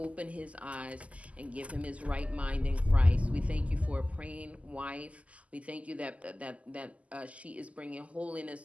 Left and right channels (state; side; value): late; left; 0.067 ms